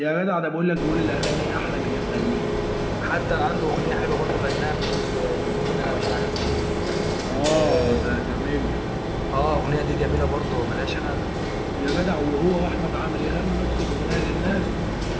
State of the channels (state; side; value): identical; both; correlation 1.00